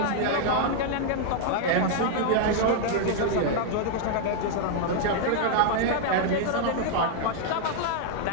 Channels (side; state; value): both; different; correlation 0.00